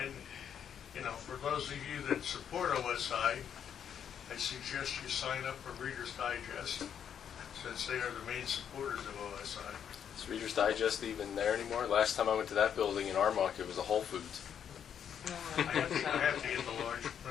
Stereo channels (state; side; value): quieter; right; 8.5 dB